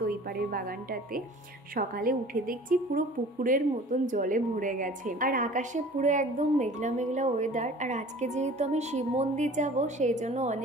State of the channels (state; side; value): normal; both; correlation 0.45